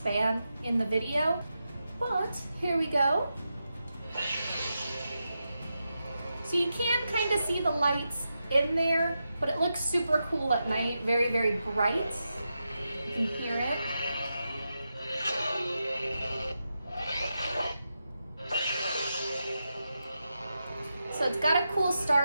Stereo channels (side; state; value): both; inverted; correlation -0.88